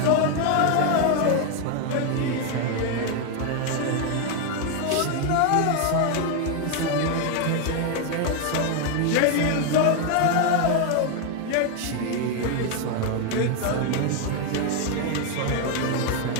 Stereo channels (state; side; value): different; both; correlation 0.01